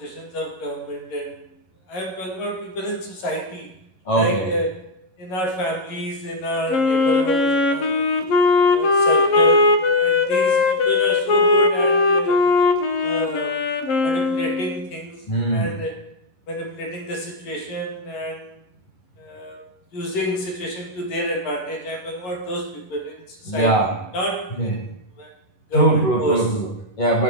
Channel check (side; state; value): right; late; 11 ms